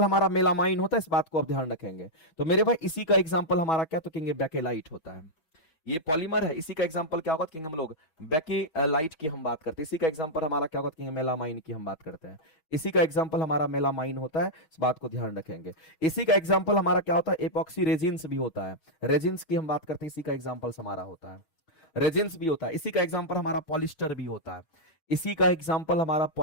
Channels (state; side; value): late; right; 6.2 ms